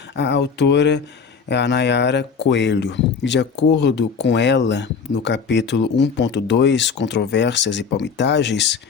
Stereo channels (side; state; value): right; quieter; 5.8 dB